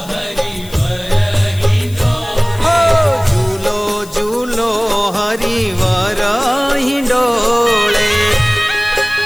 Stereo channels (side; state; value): left; noise; hiss, 19 dB below the sound